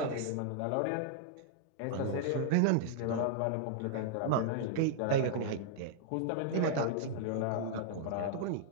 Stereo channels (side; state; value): both; different; correlation -0.01